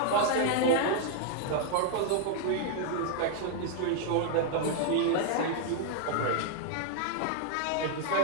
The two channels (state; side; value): different; both; correlation 0.00